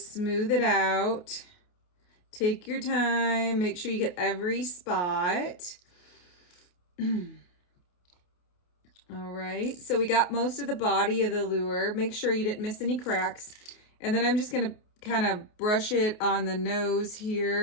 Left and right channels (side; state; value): right; late; 28 ms